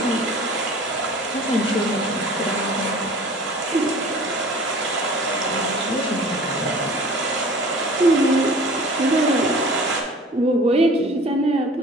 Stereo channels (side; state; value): both; normal; correlation 0.44